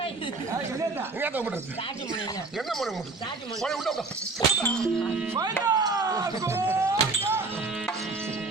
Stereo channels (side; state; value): left; quieter; 3.6 dB